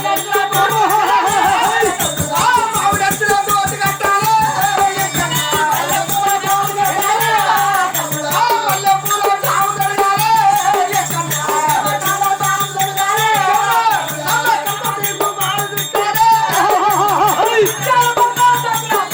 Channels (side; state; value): both; identical; correlation 1.00